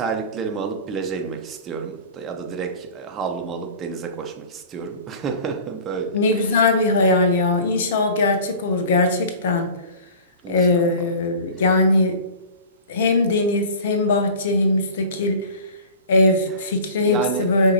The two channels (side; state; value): both; inverted; correlation -0.40